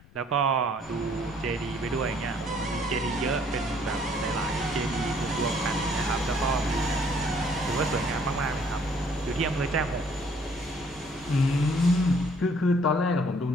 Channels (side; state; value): left; noise; rumble, 25 dB below the sound